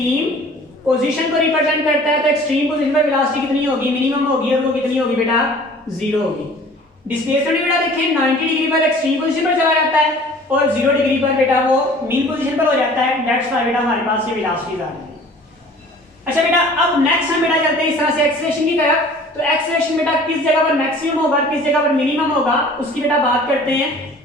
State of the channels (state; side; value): normal; both; correlation 0.48